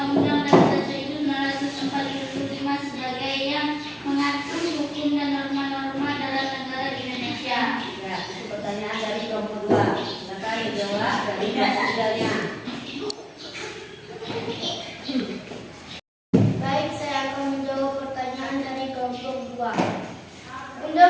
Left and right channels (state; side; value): identical; both; correlation 1.00